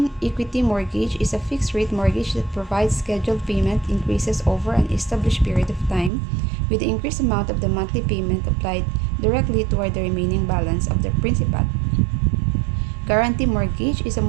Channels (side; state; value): left; drops out; at 6.1 s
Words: equity mortgage is a fixed rate mortgage that provides scheduled payment increases over an established period of time, with the increased amount of the monthly payment applied directly toward the remaining balance of the principal. Guarantee mortgage is a